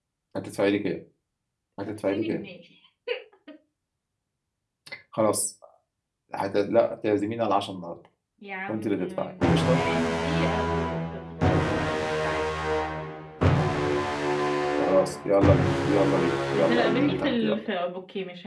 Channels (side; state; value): both; identical; correlation 1.00